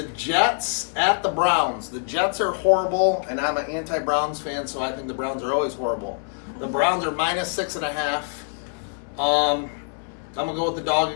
Jets at the Browns. The Jets are horrible, and I'm an anti-Browns fan, so I think the Browns are always horrible. The Browns are minus 6.5. I'm going to go with the dog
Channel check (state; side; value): silent; right; 62 dB below the other